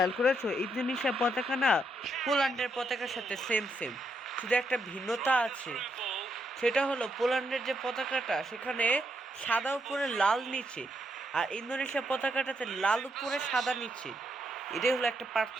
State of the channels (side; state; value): both; normal; correlation 0.78